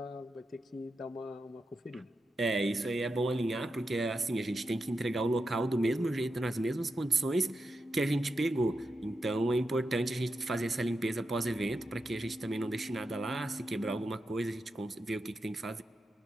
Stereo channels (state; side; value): normal; both; correlation 0.88